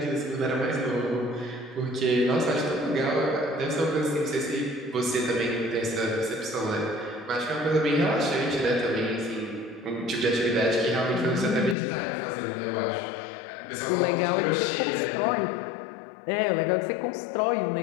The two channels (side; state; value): right; drops out; at 11.8 s